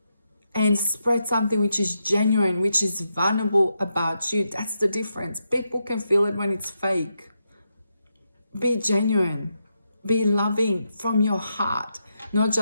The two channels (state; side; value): inverted; both; correlation -0.84